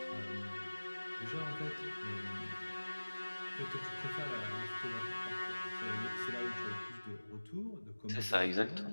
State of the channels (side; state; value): both; inverted; correlation -1.00